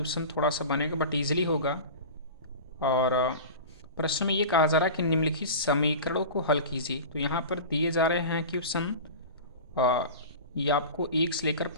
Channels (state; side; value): inverted; both; correlation -0.33